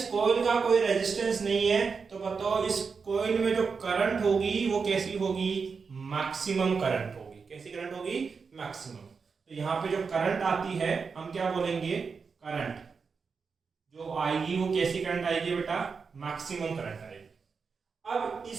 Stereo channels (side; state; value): left; quieter; 5.3 dB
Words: कॉइल का कोई रेजिस्टेंस नहीं है तो बताओ इस कॉइल में जो करंट होगी वो कैसी होगी, मैक्सिमम करंट होगी। कैसी करंट होगी, मैक्सिमम। तो यहाँ पे जो करंट आती है हम क्या बोलेंगे, करंट जो आएगी वो कैसी करंट आएगी बेटा, मैक्सिमम करंट आएगी। अब